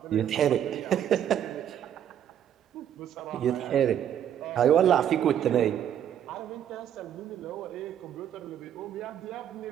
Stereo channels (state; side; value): quieter; left; 9.9 dB